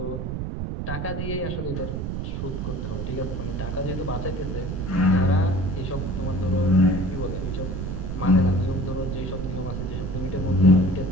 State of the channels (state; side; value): noise; right; rumble, 3 dB below the sound